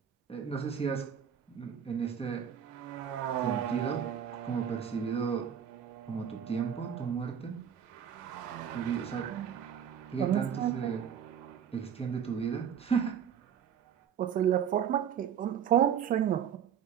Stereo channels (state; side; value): quieter; left; 8.5 dB